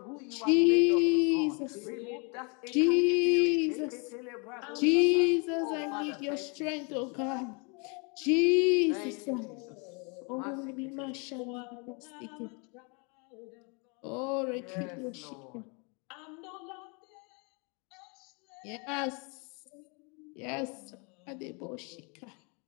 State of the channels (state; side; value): quieter; right; 33.7 dB